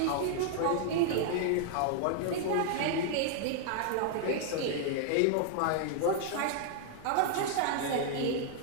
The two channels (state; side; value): different; both; correlation -0.01